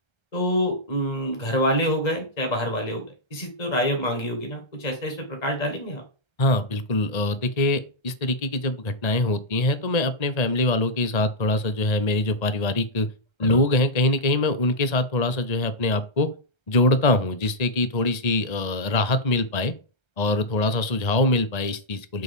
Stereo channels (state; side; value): late; right; 1.3 ms